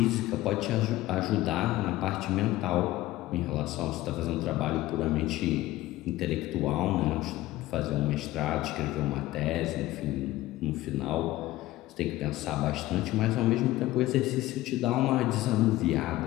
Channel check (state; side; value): quieter; right; 16.6 dB